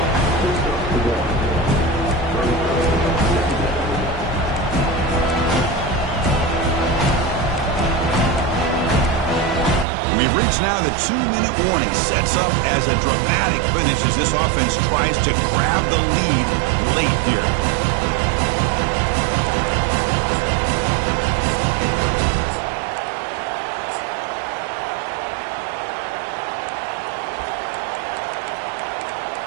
It's now the 2-minute warning. Sets up as a dramatic finish as this offense tries to grab the lead late here.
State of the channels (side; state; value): left; drops out; at 9.9 s